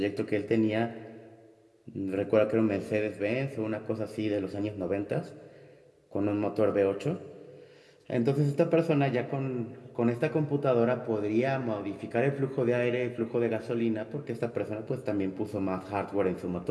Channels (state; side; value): identical; both; correlation 1.00